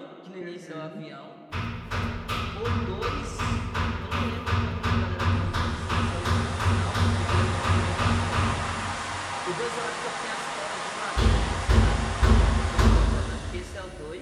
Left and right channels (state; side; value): identical; both; correlation 1.00